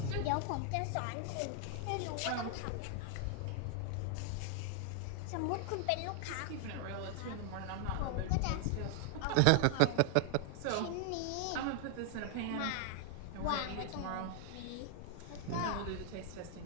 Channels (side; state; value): both; different; correlation 0.00